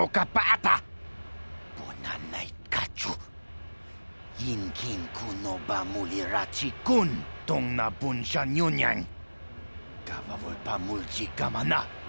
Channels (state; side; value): inverted; both; correlation -1.00